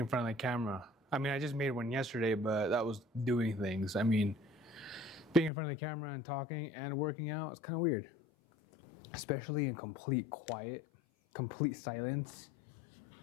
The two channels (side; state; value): right; drops out; at 5.5 s